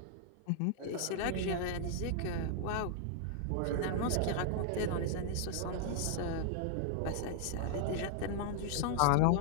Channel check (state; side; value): different; both; correlation 0.00